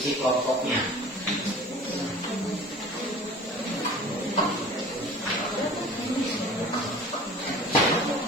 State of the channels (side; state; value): both; normal; correlation 0.43